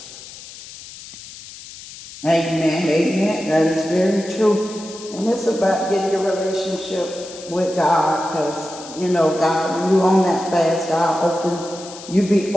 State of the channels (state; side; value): noise; left; hiss, 15 dB below the sound